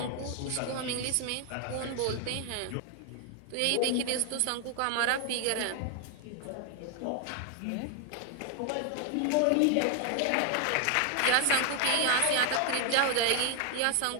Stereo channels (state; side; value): different; both; correlation 0.00